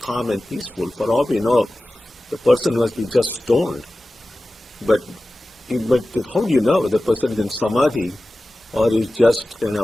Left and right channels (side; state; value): both; normal; correlation 0.96